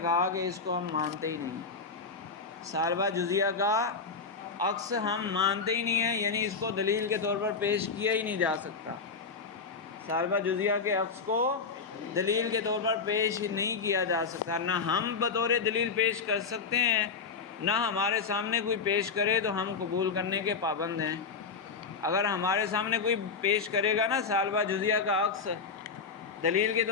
کہا کہ اس کو ہم مانتے ہی نہیں، سالبہ جزیہ کا عکس ہم مانتے ہی نہیں ہیں، یعنی اس کو دلیل کے طور پر پیش کیا ہی نہیں جا سکتا، سالبہ جزیہ کے عکس کو دلیل کے طور پر پیش نہیں کیا جا سکتا، نہ ہم بطور دلیل پیش کر سکتے ہیں، نہ ہمارے سامنے کوئی پیش کرے تو ہم قبول کرنے کے پابند ہیں۔ اگر ہمارے سامنے کوئی پیش کرے گا نا سالبہ جزیہ کا عکس دلیل کے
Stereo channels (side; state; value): right; quieter; 5.0 dB